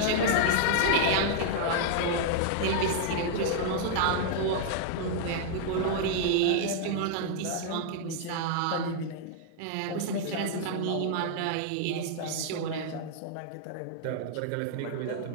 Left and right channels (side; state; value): both; different; correlation -0.01